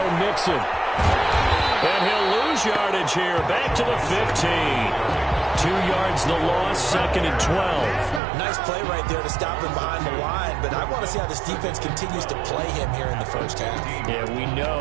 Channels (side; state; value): left; drops out; at 8.2 s